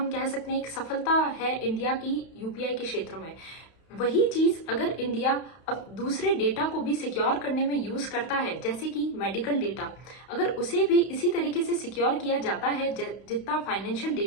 कह सकते हैं, एक सफलता है इंडिया की यूपीआई के क्षेत्र में। वही चीज अगर इंडिया अब दूसरे डेटा को भी सिक्योर करने में यूज करता है, जैसे कि मेडिकल डेटा, अगर उसे भी इसी तरीके से सिक्योर किया जाता है जितना फाइनेंशियल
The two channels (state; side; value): late; right; 31 ms